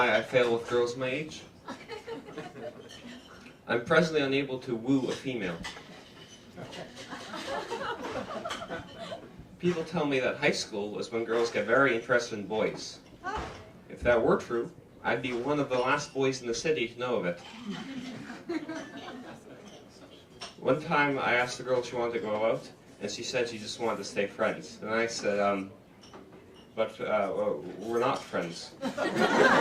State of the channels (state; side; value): identical; both; correlation 1.00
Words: I fail with girls my age. I'm presently unable to woo a female. People tell me that high school is when girls get very interested in boys. If that were true, I'd be one of the last boys in the city to know of it. One time I asked the girl if she wanted to go out, and she said she just wanted to stay friends. And I said, but we're not friends.